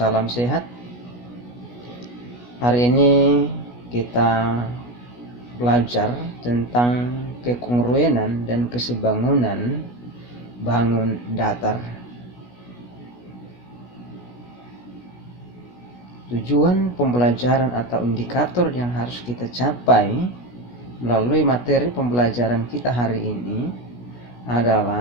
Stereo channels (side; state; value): right; late; 16 ms